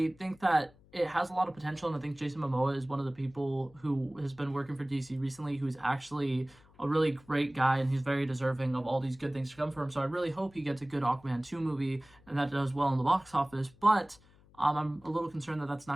think that it has a lot of potential, and I think Jason Momoa is one of the people who has been working for DC recently, who's actually a really great guy, and he's very deserving of all these good things to come from him. So I really hope he gets a good Aquaman 2 movie, and that does well in the box office. But I'm a little concerned that that's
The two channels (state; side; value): noise; left; hum, 27 dB below the sound